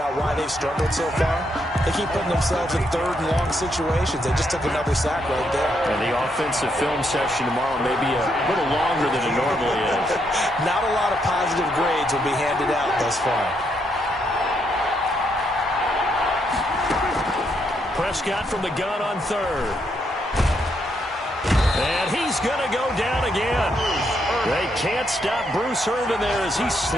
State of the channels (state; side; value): normal; both; correlation 0.77